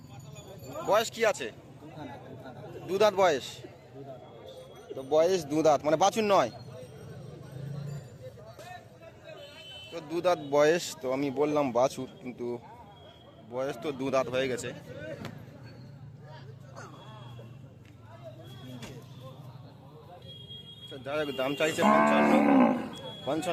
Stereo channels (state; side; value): identical; both; correlation 1.00